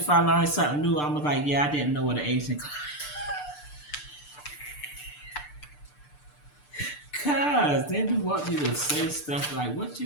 I learned something new, I'm like, yeah, I didn't know what an Asian Cause then you want me to say stuff like, what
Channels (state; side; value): late; right; 6.8 ms